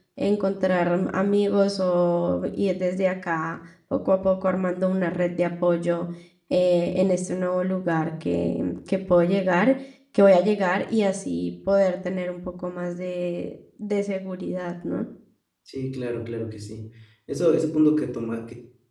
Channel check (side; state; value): both; identical; correlation 1.00